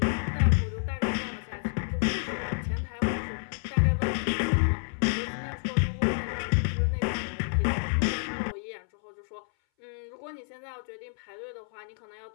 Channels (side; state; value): right; silent; 58 dB below the other